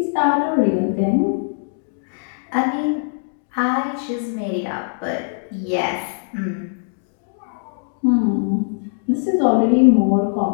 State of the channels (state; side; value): silent; right; digital silence